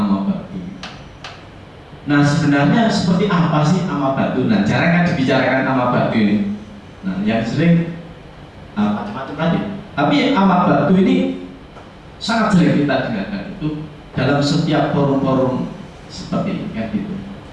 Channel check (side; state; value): both; identical; correlation 1.00